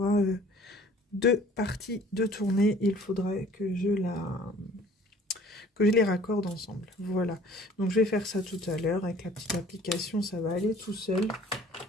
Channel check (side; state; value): both; normal; correlation 0.52